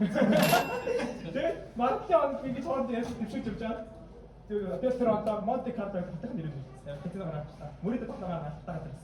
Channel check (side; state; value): both; identical; correlation 1.00